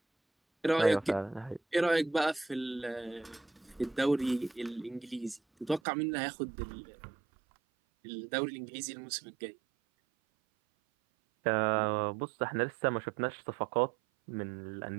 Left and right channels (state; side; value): drops out; left; at 5.8 s